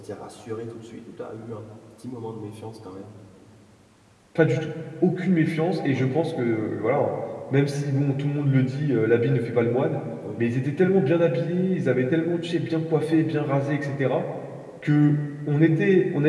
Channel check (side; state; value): both; identical; correlation 1.00